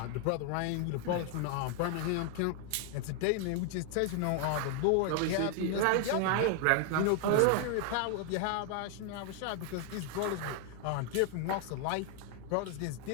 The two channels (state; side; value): different; both; correlation 0.00